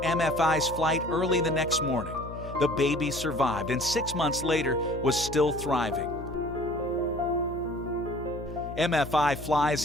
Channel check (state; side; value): noise; left; hum, 11 dB below the sound